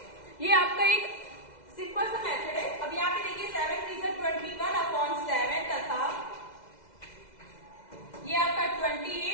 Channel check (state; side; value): late; right; 2.0 ms